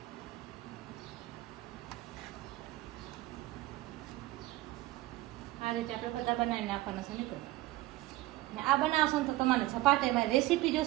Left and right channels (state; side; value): quieter; left; 17.7 dB